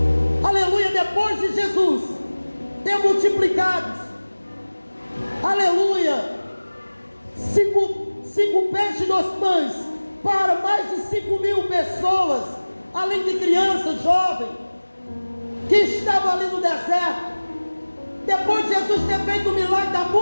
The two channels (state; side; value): inverted; both; correlation -1.00